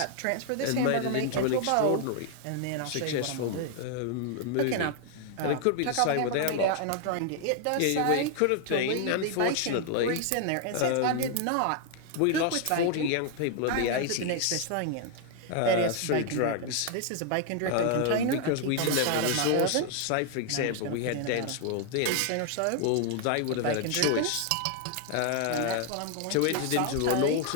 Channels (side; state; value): both; different; correlation 0.00